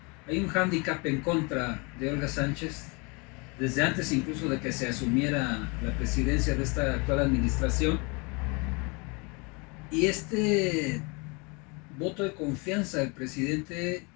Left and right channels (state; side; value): quieter; right; 30.1 dB